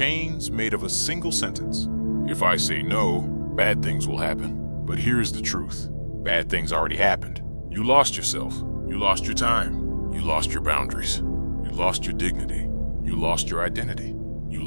made of a single sentence. If I say no, bad things will happen. But here's the truth. Bad things already happened. You lost yourself. You lost your time. You lost your boundaries. You lost your dignity. You lost your identity. You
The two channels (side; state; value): both; inverted; correlation -1.00